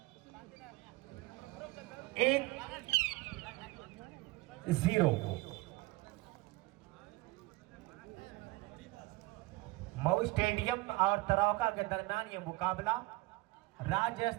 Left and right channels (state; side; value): quieter; left; 21.1 dB